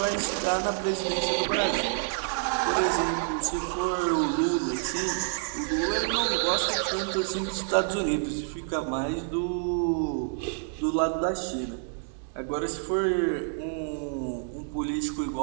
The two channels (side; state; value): left; silent; 59 dB below the other